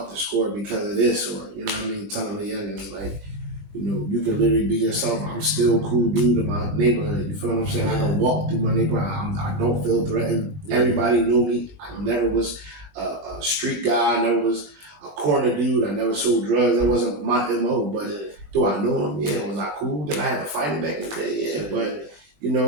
the score because of this, or telling the youngins like, you can literally be yourself. I'm still a cool dude in my neighborhood. You feel what I'm saying? I can walk through my neighborhood. I don't feel threatened. Everybody knew me. I never was a street guy. I never was a corner dude. I never sold drugs. That wasn't my MO. But do I know him? Yeah. Was I cool? Did I have to fight him back in the day? Yeah. But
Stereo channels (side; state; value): left; late; 20 ms